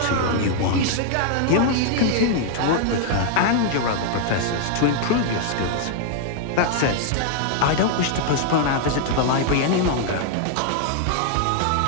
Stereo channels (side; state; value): both; different; correlation 0.00